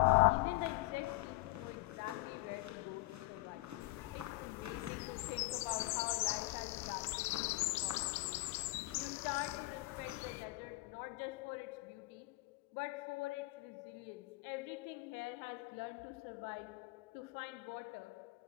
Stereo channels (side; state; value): right; quieter; 22.0 dB